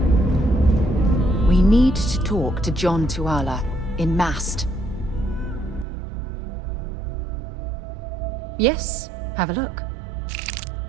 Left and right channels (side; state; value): left; drops out; at 5.9 s